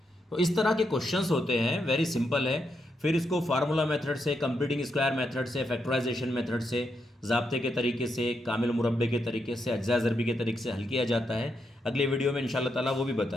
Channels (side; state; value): both; normal; correlation 0.81